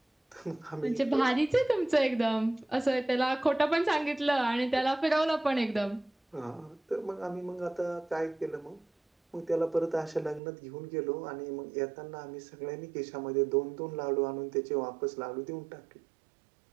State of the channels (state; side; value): drops out; left; at 10.4 s